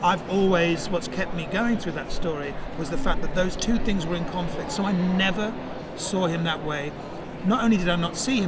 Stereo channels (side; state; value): both; identical; correlation 1.00